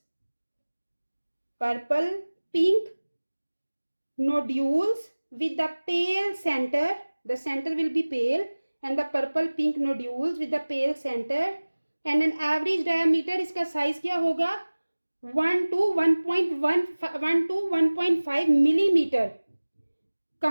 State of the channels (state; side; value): inverted; both; correlation -1.00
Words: Purple pink nodules with the pale center. The center will be pale and the purple pink nodules with the pale center and an average diameter. इसका size क्या होगा? 1 to 1.5 millimeter.